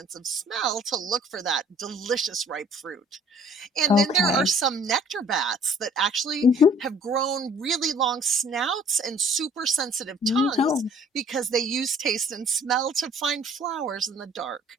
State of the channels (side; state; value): both; normal; correlation 0.54